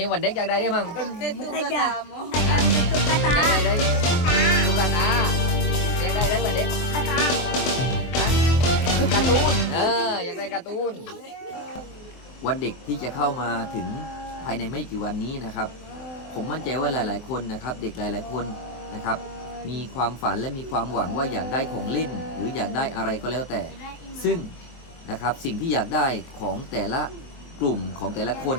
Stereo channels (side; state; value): right; late; 23 ms